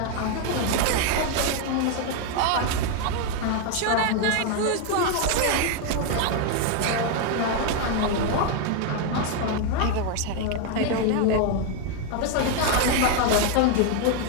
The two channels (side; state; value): both; different; correlation 0.01